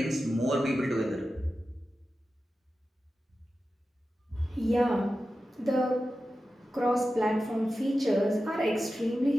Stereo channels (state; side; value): normal; both; correlation 0.93